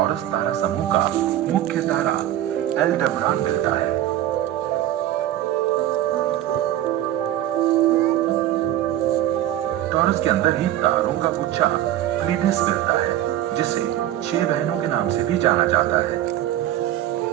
तारा समूह का मुख्य तारा एल्डेबरान मिलता है। टॉरस के अंदर ही तारों का गुच्छा प्लीनिस मिलता है, जिसे 6 बहनों के नाम से भी जाना जाता है।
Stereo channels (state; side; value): quieter; left; 12.7 dB